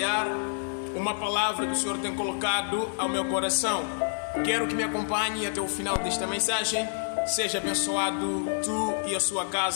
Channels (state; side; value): silent; right; 59 dB below the other